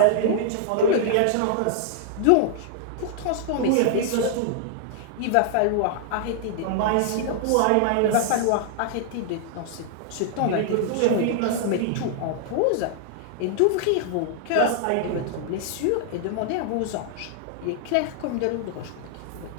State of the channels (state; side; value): different; both; correlation -0.01